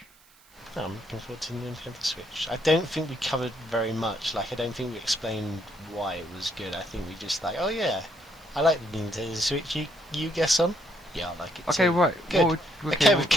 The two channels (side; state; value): right; noise; hiss, 28 dB below the sound